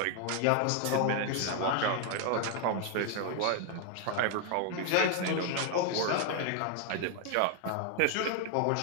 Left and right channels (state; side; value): different; both; correlation 0.00